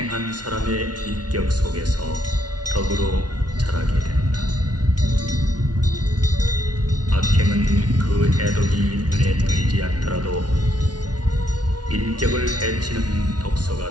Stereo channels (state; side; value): late; left; 0.69 ms